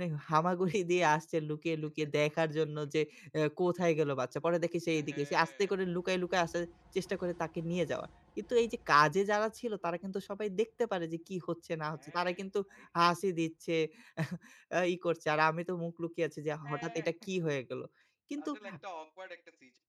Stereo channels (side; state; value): both; identical; correlation 1.00